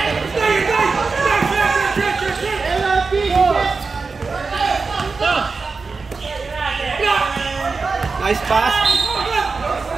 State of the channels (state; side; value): quieter; left; 4.4 dB